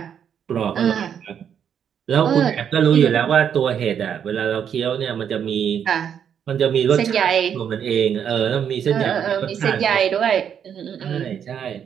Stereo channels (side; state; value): left; quieter; 8.4 dB